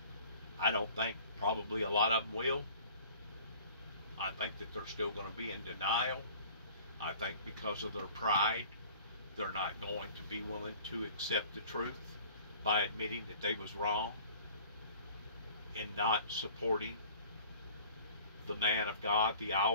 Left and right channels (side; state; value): both; inverted; correlation -0.49